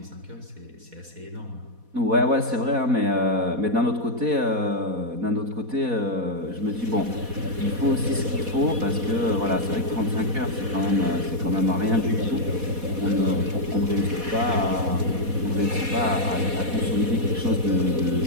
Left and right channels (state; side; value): late; left; 4.1 ms